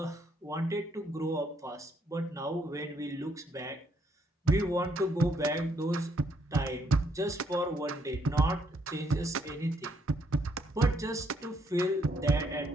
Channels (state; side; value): normal; both; correlation 0.72